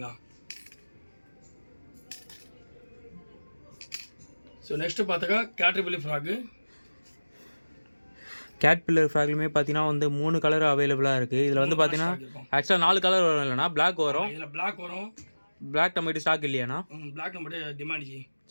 ஸோ நெக்ஸ்ட்டு பார்த்தாக்கா கேட்டபிள் ஃப்ராக்கு. கேட்பில்லர் ஃப்ராக்லுமே பார்த்தீங்கன்னா வந்து 3 கலர் அவைலபிளாக இருக்குது. இதில் வந்து பார்த்தீங்கன்னா ஆக்சுவலாக 4 கலர் வரும். இல்லைனா பிளாக் வரும். இதில் பிளாக் வரும். பிளாக் நம்மகிட்ட ஸ்டாக் இல்லையாண்ணா? பிளாக் நம்மகிட்ட டிமாண்ட் ஜி.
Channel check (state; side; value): inverted; both; correlation -1.00